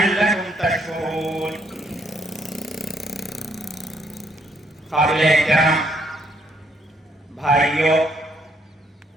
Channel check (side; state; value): both; normal; correlation 0.70